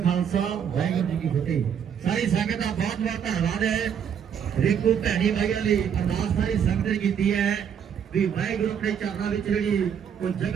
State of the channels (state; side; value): quieter; left; 8.0 dB